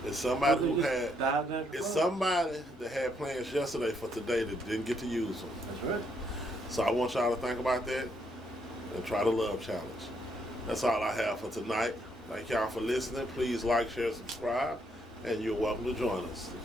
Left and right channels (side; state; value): both; normal; correlation 0.74